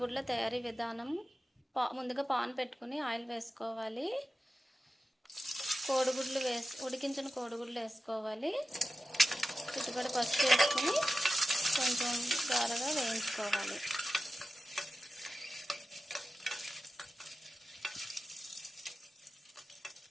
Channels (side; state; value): both; normal; correlation 0.93